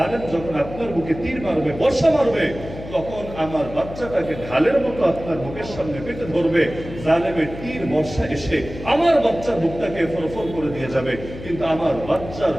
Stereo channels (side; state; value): left; noise; hum, 12 dB below the sound